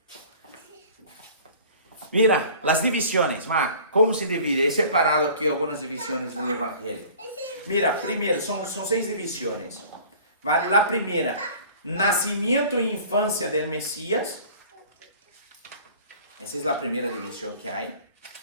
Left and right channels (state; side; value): inverted; both; correlation -0.47